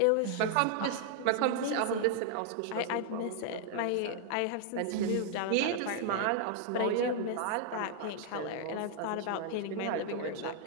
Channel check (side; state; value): both; different; correlation 0.00